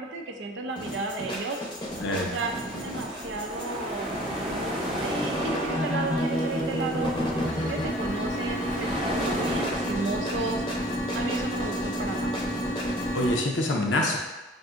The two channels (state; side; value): normal; both; correlation 0.49